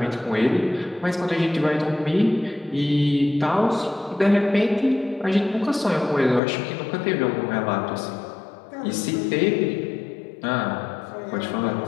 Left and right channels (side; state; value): right; drops out; at 6.4 s